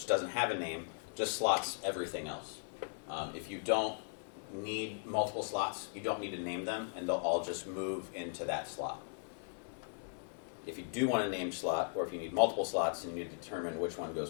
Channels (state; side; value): silent; right; digital silence